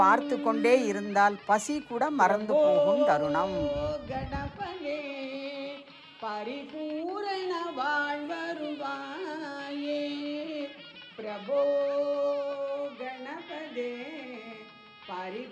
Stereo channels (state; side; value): identical; both; correlation 1.00